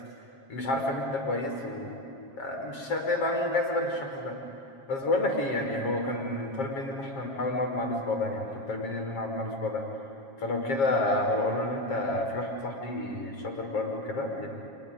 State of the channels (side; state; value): right; late; 7.4 ms